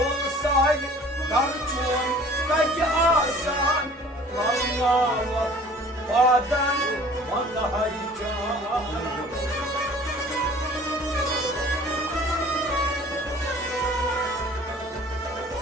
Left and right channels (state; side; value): normal; both; correlation 0.49